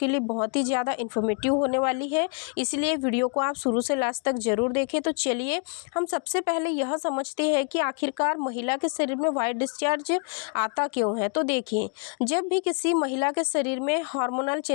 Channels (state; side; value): quieter; right; 37.8 dB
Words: लिए बहुत ही ज़्यादा इन्फॉर्मेटिव होने वाली है, इसलिए वीडियो को आप शुरू से लास्ट तक ज़रूर देखें। तो चलिए हम सबसे पहले यह समझते हैं कि आखिरकार महिला के शरीर में व्हाइट डिस्चार्ज आता क्यों है। तो देखिए, जब भी किसी महिला के शरीर में हार्मोनल